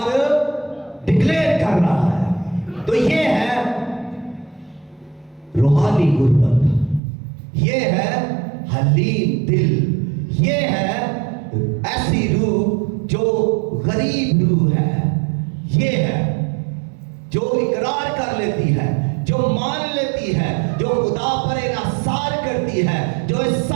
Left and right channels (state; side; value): drops out; left; at 7.0 s